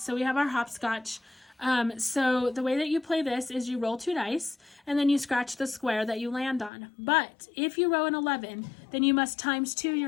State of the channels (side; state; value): right; drops out; at 6.7 s